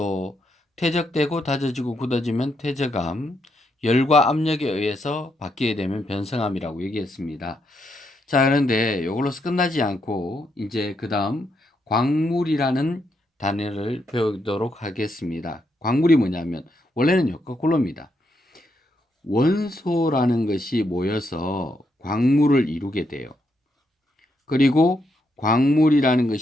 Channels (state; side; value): normal; both; correlation 0.79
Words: 퇴적되고 다져지고 굳어지면 퇴적암, 열과 압력에 의해서 바뀌게 되면 변성암이라고 얘기했습니다. 자, 그런데 이걸로서 끝나지 않고 이제 그 다음 광물이라는 단어를 배우도록 하겠습니다. 광물이 뭐냐면 원래는요, 거꾸로입니다. 원소라는 것이 모여서 광물을 이루게 돼요. 그리고 광물이라는